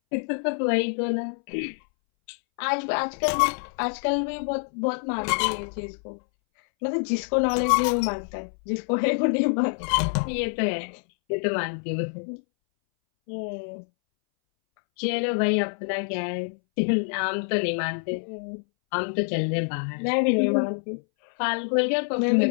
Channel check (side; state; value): right; silent; 61 dB below the other